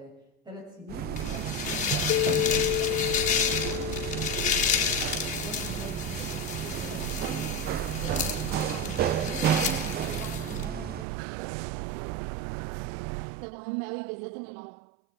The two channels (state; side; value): drops out; left; at 11.1 s